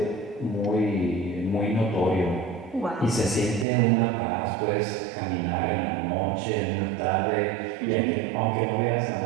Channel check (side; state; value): left; drops out; at 3.7 s